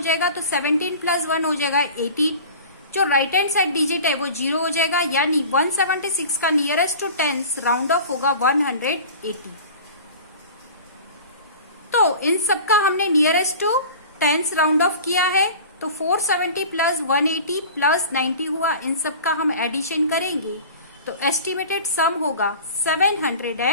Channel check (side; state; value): both; inverted; correlation -0.39